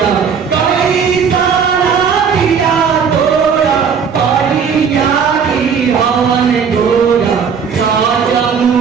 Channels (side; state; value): left; quieter; 6.6 dB